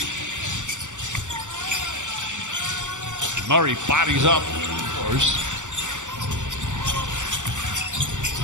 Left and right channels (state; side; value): late; left; 0.85 ms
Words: Murray bodies up.